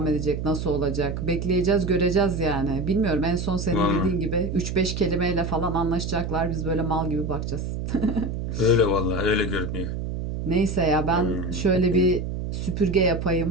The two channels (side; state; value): right; noise; hum, 4 dB below the sound